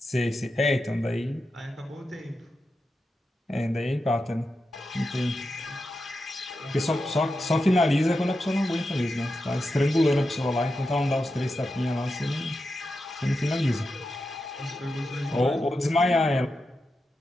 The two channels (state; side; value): normal; both; correlation 0.89